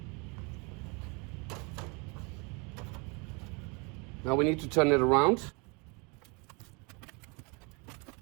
Now we need to turn it around.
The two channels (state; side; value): quieter; left; 30.8 dB